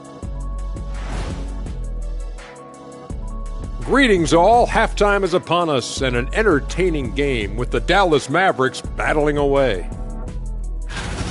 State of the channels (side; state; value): both; identical; correlation 1.00